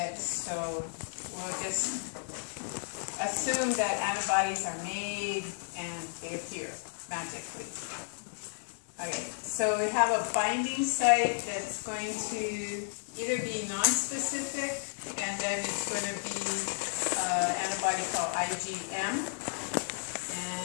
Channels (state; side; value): silent; right; digital silence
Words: so we'll just assume that antibodies are made and they appear magically. Okay, so we have a binding site that's going to either be non-specific, and then it's going to be antibody called IgM.